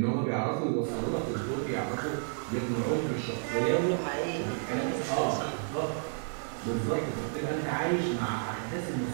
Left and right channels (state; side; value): silent; left; digital silence